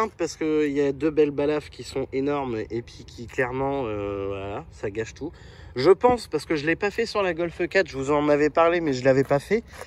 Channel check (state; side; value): identical; both; correlation 1.00